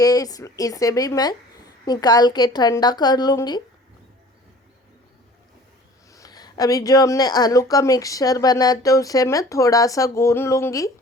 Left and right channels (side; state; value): both; normal; correlation 0.47